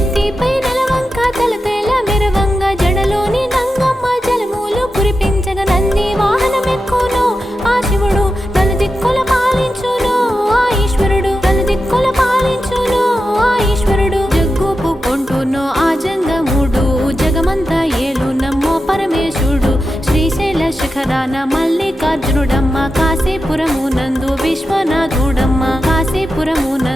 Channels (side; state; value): both; normal; correlation 0.90